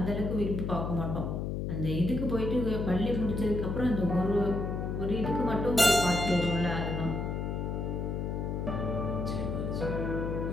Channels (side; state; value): left; noise; hum, 2 dB below the sound